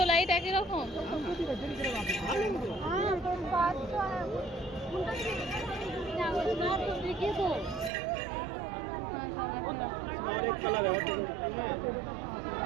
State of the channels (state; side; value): drops out; left; at 7.9 s